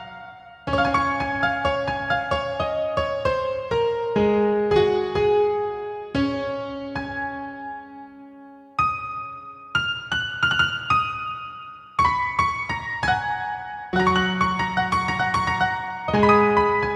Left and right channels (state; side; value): identical; both; correlation 1.00